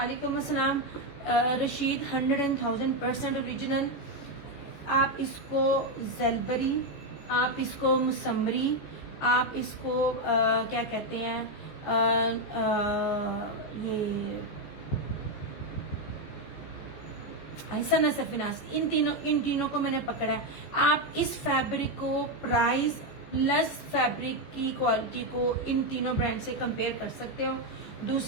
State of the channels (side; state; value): right; late; 14 ms